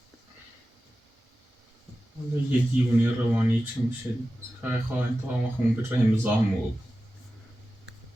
یه دیوونی روانی چی میشه خواهی خواهی تا همه خون به رحم زامو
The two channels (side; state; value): both; normal; correlation 0.94